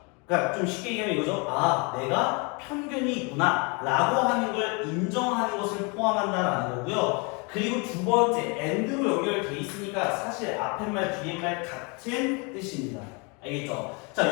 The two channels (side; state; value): right; quieter; 31.5 dB